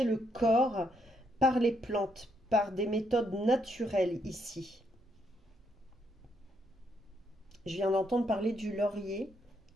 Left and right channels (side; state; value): both; normal; correlation 0.75